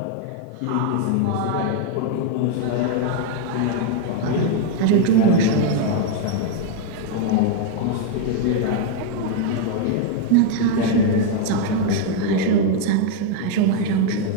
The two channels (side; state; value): both; different; correlation 0.01